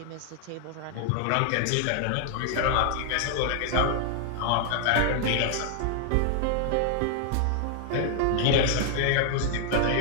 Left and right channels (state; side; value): different; both; correlation 0.00